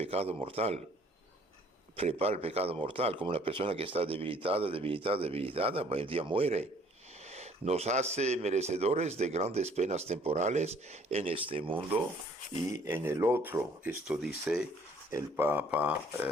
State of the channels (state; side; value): normal; both; correlation 0.58